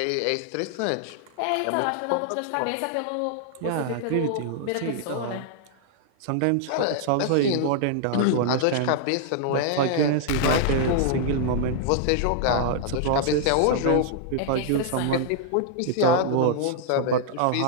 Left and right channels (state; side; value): different; both; correlation -0.01